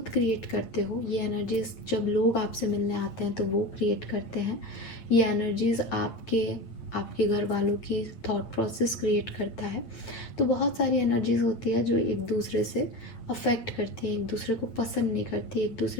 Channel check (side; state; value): right; late; 8.8 ms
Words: क्रिएट करते हो। ये एनर्जीज जब लोग आपसे मिलने आते हैं तो वो क्रिएट करते हैं। ये एनर्जीज आपके घर वालों की थॉट प्रोसेस क्रिएट करता है। तो बहुत सारी एनर्जीज होती है जो एक दूसरे से अफेक्ट करती है, एक दूसरे को पसंद नहीं करती, एक